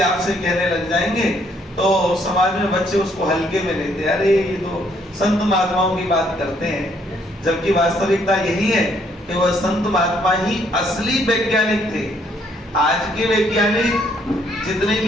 आपसे कहने लग जाएंगे तो समाज में बच्चे उसको हल्के में लेते हैं। अरे ये तो संत महात्माओं की बात करते हैं, जबकि वास्तविकता यही है कि वह संत महात्मा ही असली वैज्ञानिक थे। आज के वैज्ञानिक जितने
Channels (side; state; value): both; normal; correlation 0.68